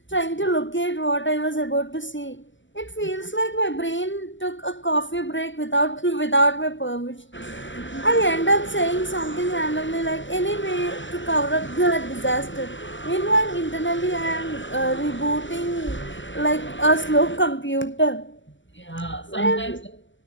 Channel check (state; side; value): late; right; 0.54 ms